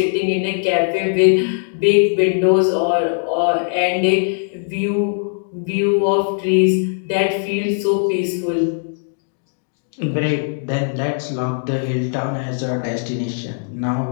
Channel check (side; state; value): right; silent; digital silence